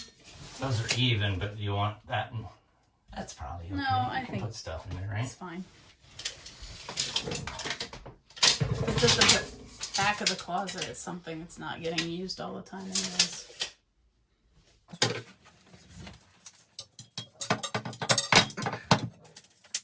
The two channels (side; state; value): both; identical; correlation 1.00